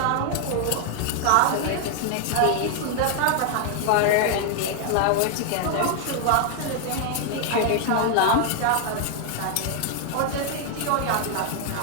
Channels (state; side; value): different; both; correlation 0.00